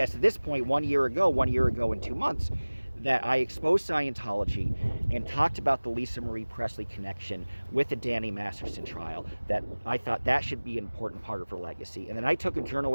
at this point, 1 year ago and 2 months, that I exposed Scientology and talked about the Lisa Marie Presley connection with the Danny Masterson trial, that I thought that should be an important part of her legacy. And then I took a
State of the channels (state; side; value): inverted; both; correlation -1.00